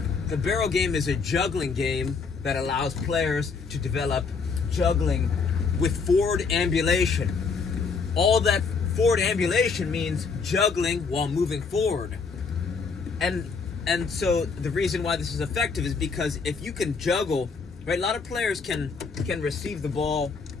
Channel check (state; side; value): quieter; right; 5.1 dB